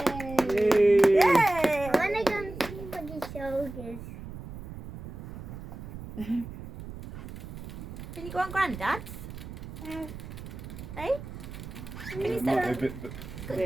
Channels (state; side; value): noise; right; rumble, 11 dB below the sound